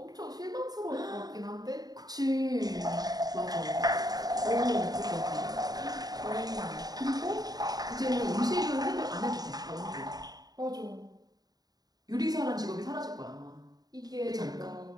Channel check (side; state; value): left; late; 0.19 ms